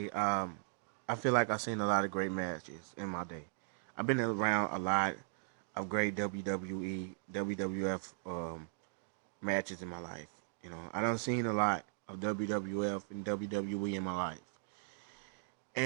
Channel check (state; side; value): silent; left; digital silence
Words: I feel like I've seen a lot of great matches in my day. I've been around a lot of great WWE, WWF matches in my life. I done seen a lot of WWF and WWE in my life,